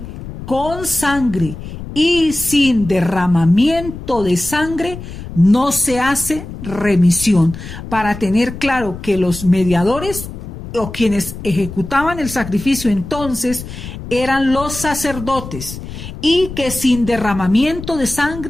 con sangre, y sin derramamiento de sangre no se hace remisión. Para tener claro que los mediadores o quienes ejecutaban el sacrificio entonces eran los sacerdotes, y que sin derramamiento de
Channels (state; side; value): noise; left; rumble, 11 dB below the sound